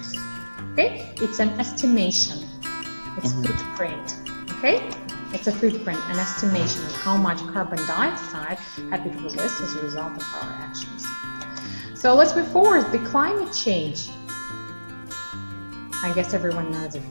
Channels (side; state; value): both; inverted; correlation -1.00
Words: Okay, it's an estimation. It's footprint. Okay, it's a footprint, an estimation of how much carbon dioxide have been released as a result of our actions. So let's move forward. The climate change. I guess everyone knows it,